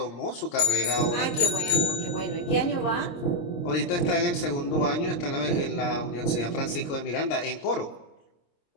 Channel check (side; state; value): right; late; 26 ms